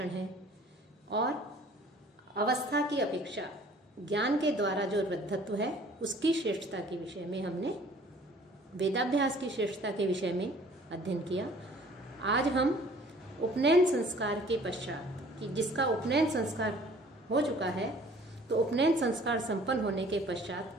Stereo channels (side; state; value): both; normal; correlation 0.53